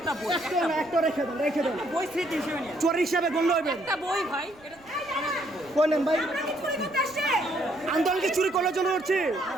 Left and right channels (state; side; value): noise; right; rumble, 27 dB below the sound